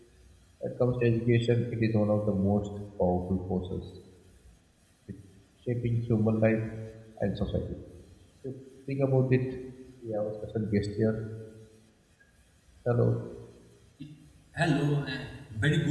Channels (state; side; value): identical; both; correlation 1.00